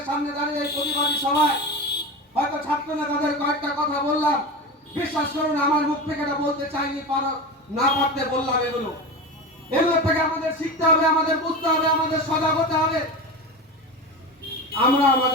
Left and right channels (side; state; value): both; normal; correlation 0.25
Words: সামনে দাঁড়িয়ে এই প্রতিবাদী সভায় হয়তো ছাত্র নেতাদের কয়েকটা কথা বললাম, বিশ্বাস করুন আমার মুখ থেকে এটা বলতে চাইনি, না পারতে বললাম। এগুলো থেকে আমাদের শিখতে হবে, আমাদের বুঝতে হবে, আমাদের সজাগ হতে হবে। আমরা